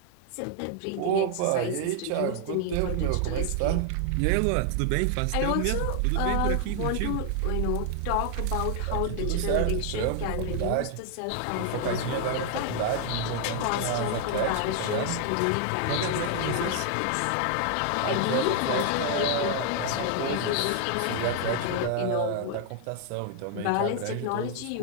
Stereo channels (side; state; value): both; different; correlation 0.00